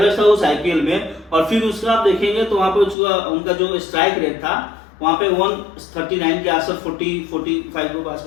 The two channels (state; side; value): drops out; right; at 3.0 s